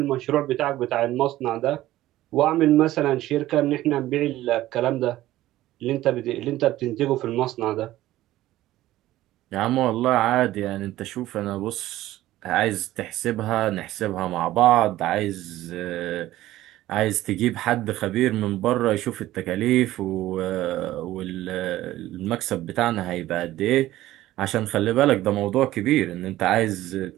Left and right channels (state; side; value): quieter; left; 15.2 dB